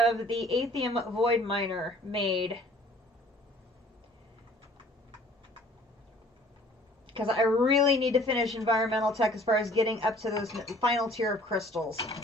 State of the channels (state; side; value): normal; both; correlation 0.53